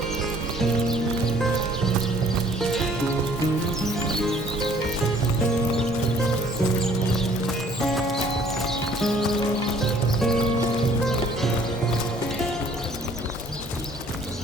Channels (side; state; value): both; normal; correlation 0.57